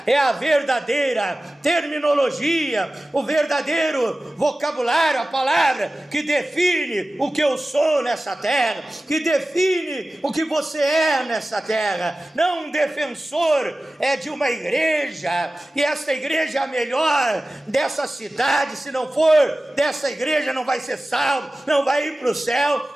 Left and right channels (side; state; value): both; normal; correlation 0.96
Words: é a verdadeira terminologia, o verdadeiro vocabulário, a palavra que define o que eu sou nessa terra, que define o que você é nessa terra. Não um defensor de uma igreja, e esta igreja é a melhor dessa cidade, se não for dessa igreja não vai ser salvo, não vai ir para o